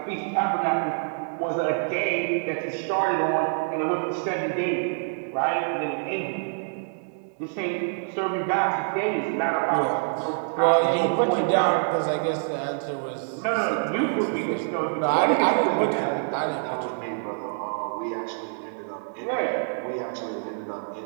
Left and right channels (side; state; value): left; silent; digital silence